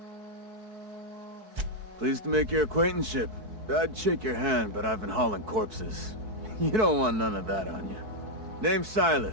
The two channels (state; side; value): late; left; 4.6 ms